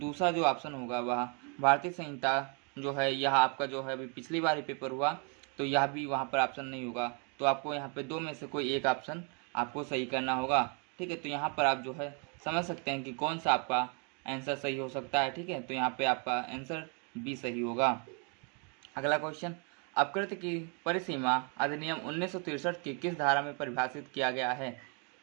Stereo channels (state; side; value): quieter; left; 37.1 dB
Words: जो ऑप्शन होगा वह भारतीय संहिता जो है, यह आपका जो है अभी पिछली बार ही पेपर हुआ, तो यह भी वहाँ पर ऑप्शन नहीं होगा। तो आपको यहाँ पे दो में से कोई एक ऑप्शन आपको सही करना होगा, ठीक है। तो यहाँ पर आप जो है समझ सकते हैं कि कौन सा आपका आंसर सही हो सकता है, ठीक है। तो यहाँ पे आपका आंसर बी सही होगा। अगला क्वेश्चन, अपकृत्य की परिसीमा अधिनियम 1963 की किस धारा में परिभाषित किया गया है?